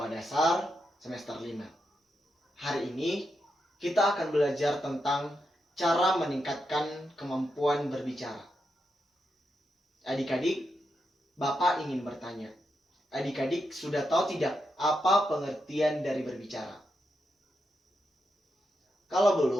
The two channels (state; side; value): normal; both; correlation 0.85